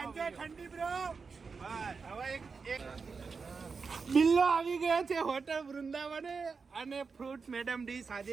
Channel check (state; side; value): quieter; left; 5.0 dB